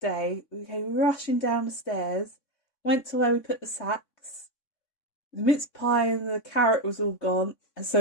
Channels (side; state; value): right; late; 3.6 ms